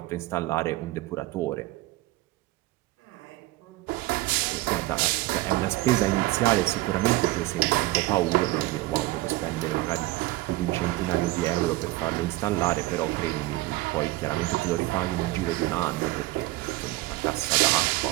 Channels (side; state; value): left; quieter; 19.2 dB